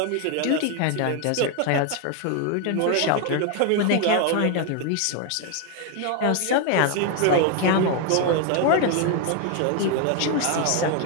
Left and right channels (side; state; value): both; different; correlation 0.01